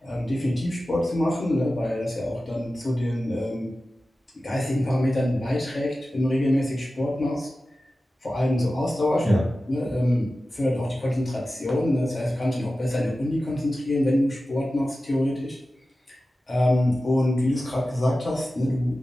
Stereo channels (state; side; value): normal; both; correlation 0.95